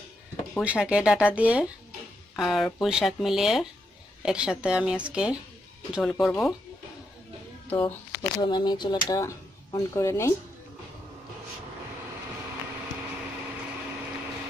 পুঁই শাকের ডাঁটা দিয়ে আর পুঁই শাক মিলিয়ে একসাথে আমি আজকে ঝোল করব। তো প্রথমে আমি চুলাটা অন করে নেই।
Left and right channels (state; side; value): normal; both; correlation 0.81